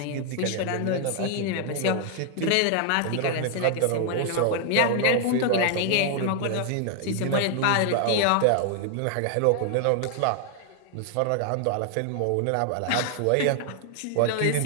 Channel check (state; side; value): different; both; correlation 0.00